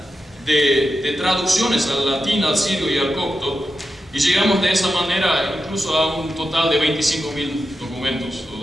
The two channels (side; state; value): both; normal; correlation 0.89